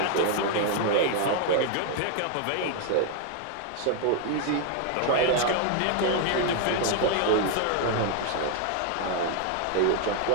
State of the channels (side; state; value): both; different; correlation 0.00